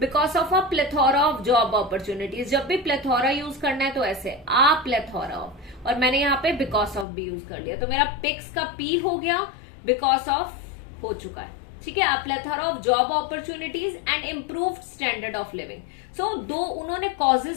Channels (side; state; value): right; drops out; at 7.1 s